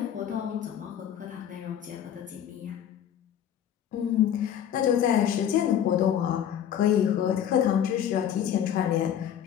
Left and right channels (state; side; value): quieter; right; 9.8 dB